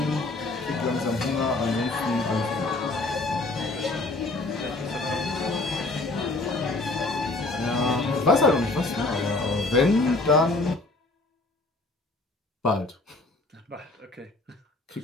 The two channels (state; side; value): quieter; right; 3.1 dB